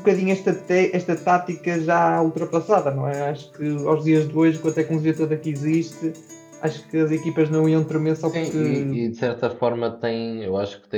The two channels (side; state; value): both; identical; correlation 1.00